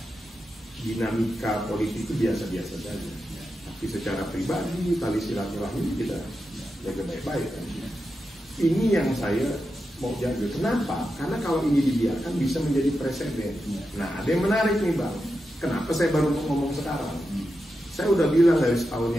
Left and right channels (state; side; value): normal; both; correlation 0.89